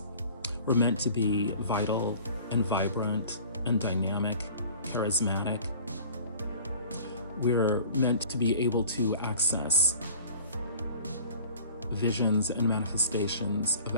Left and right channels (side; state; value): both; inverted; correlation -0.46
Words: We're meant to be vital and vibrant and dynamic, charismatic. We're meant to be able to access visions and manifestations of